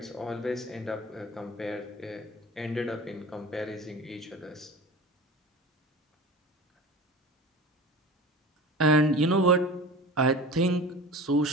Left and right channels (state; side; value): normal; both; correlation 0.36